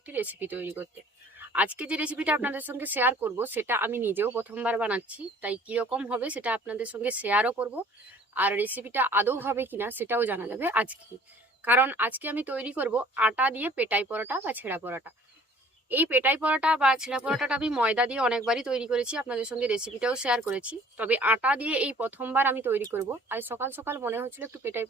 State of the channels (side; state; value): both; normal; correlation 0.52